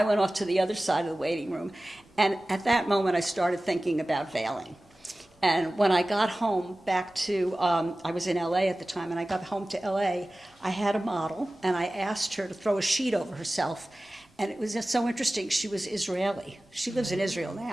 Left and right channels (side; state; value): both; normal; correlation 0.97